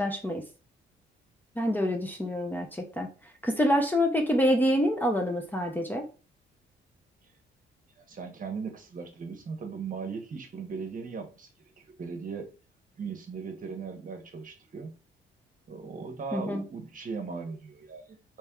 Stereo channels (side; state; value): both; normal; correlation 0.75